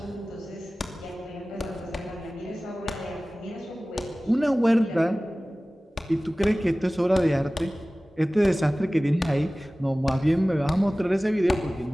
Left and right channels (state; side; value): normal; both; correlation 0.97